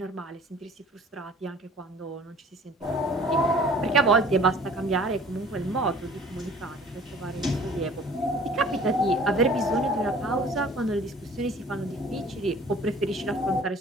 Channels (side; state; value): both; normal; correlation 0.50